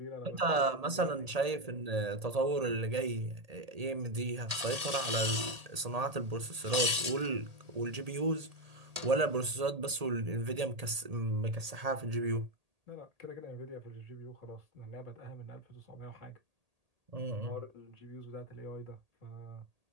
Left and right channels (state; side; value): late; left; 1.8 ms